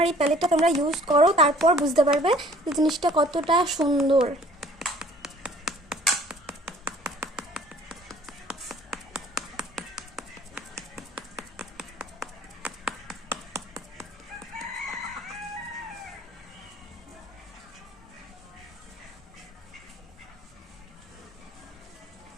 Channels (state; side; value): normal; both; correlation 0.54